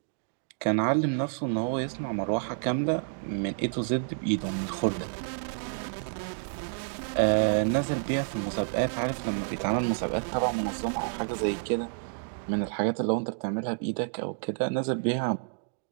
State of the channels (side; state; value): left; silent; digital silence